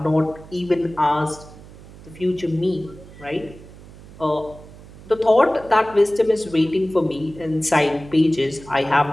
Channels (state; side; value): noise; right; hum, 19 dB below the sound